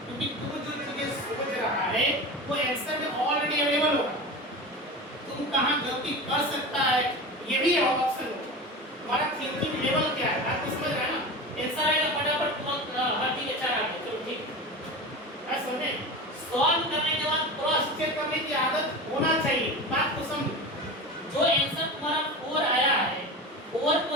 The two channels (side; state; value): both; normal; correlation 0.29